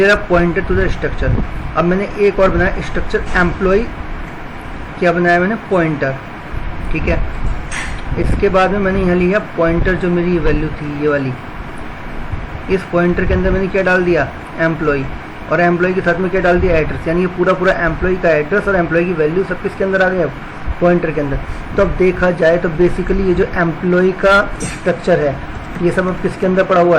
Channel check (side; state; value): both; identical; correlation 1.00